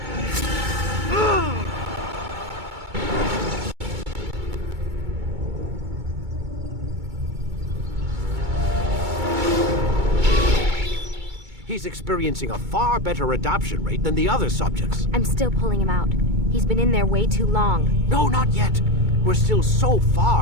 He's experiencing a far better adoption rate than the other subjects. I'm still pulling him out. He's been in there way too long. No, not yet. We're still so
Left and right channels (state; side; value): late; left; 2.2 ms